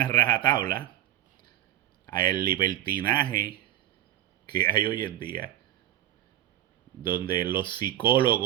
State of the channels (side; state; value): left; quieter; 13.0 dB